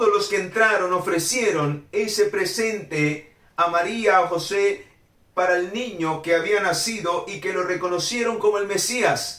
los que entraron ofrecieron ese presente a María, a José, para el niño que había nacido y que lo reconocieron como el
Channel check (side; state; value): both; identical; correlation 1.00